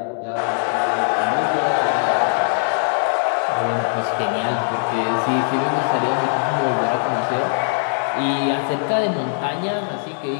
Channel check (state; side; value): silent; right; digital silence